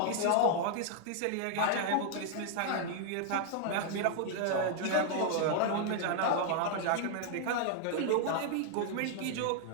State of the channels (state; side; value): different; both; correlation 0.00